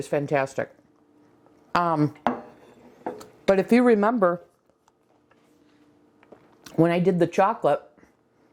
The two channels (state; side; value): identical; both; correlation 1.00